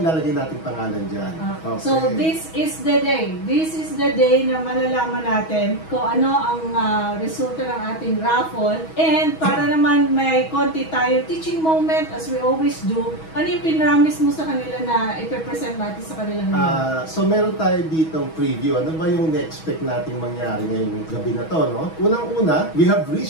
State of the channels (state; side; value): late; right; 6.2 ms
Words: natin pangalan dyan. Okay. So, this is the day. This is the day na malalaman natin kung ano ang resulta ng ating raffle. And para naman may konti tayo teaching moment, as we always do, ano yung pinramis mo sa kanila na ipipresent natin sa kanila ngayon? So, meron tayo ditong preview. Ano ba yung na-expect nating mangyari ngayong gabi na to, no? Unang-una, we have